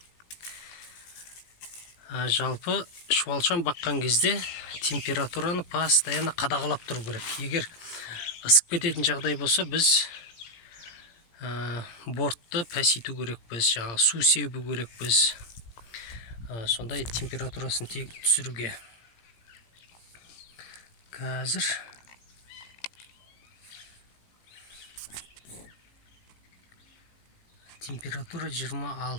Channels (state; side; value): late; right; 17 ms